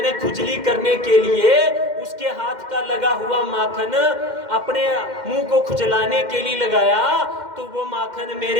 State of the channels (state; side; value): late; left; 2.1 ms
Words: खुजली करने के लिए उसके हाथ का लगा हुआ माखन अपने मुंह को खुजलाने के लिए लगाया, तो वो माखन